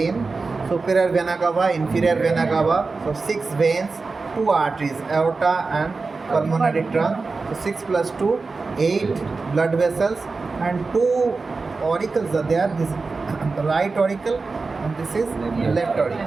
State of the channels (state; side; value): quieter; left; 4.1 dB